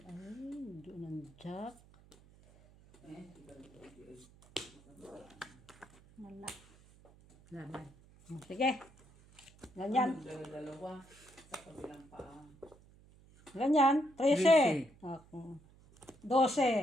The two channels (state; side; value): noise; right; hum, 25 dB below the sound